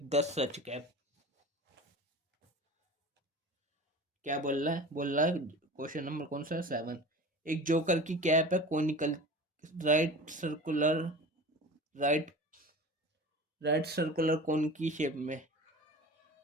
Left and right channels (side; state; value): both; normal; correlation 0.36